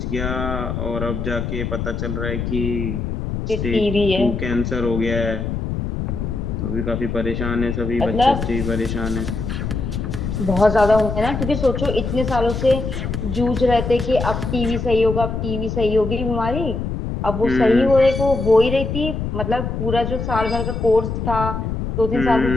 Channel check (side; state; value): left; noise; rumble, 3 dB below the sound